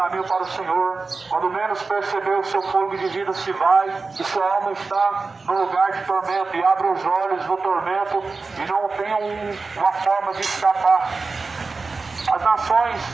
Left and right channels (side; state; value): left; quieter; 4.1 dB